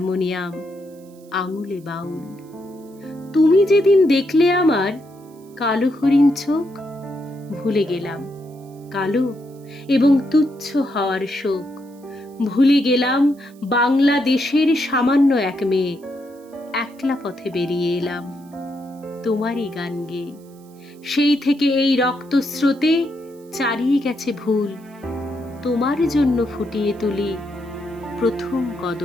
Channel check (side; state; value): right; noise; hiss, 29 dB below the sound